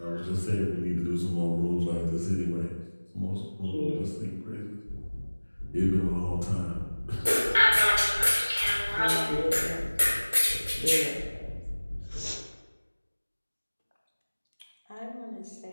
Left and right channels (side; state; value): both; inverted; correlation -1.00